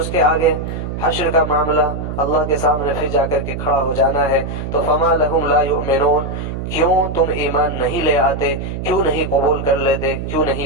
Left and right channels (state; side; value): noise; right; hum, 5 dB below the sound